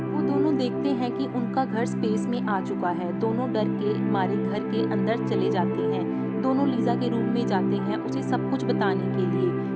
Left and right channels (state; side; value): identical; both; correlation 1.00